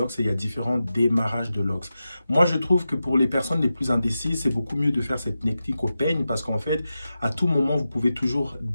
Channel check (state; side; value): inverted; both; correlation -0.91